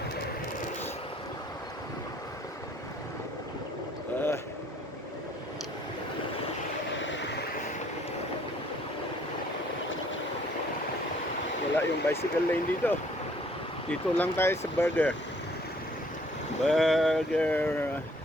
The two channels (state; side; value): normal; both; correlation 0.61